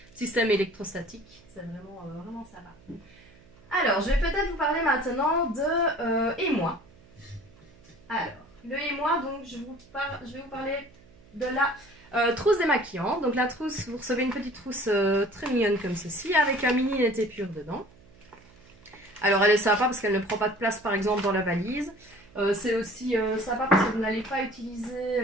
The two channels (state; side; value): noise; right; hum, 26 dB below the sound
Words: système électrostatique. C'est vraiment sympa. Alors, je vais peut-être vous parler maintenant de émoi. Alors, le émoi, donc je vais vous parler de la trousse démaquillant. Donc la trousse, vous recevez une petite trousse très mignonne comme ceci, avec un mini net épure dedans. Alors elle est sympa parce qu'elle ne prend pas de place par exemple dans la valise. C'est aussi sympa parce que vous n'allez pas utiliser